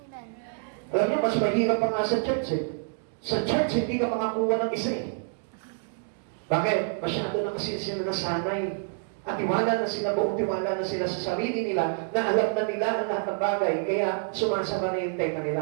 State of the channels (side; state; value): left; silent; digital silence